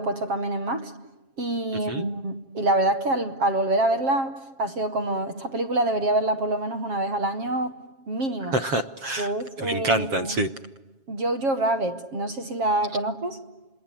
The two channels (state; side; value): late; left; 7.4 ms